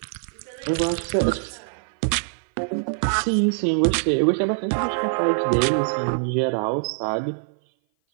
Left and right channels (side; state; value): left; silent; 57 dB below the other